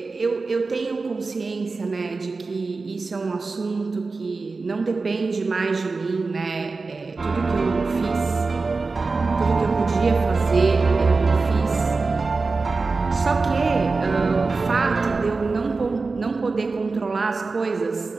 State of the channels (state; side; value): quieter; left; 4.0 dB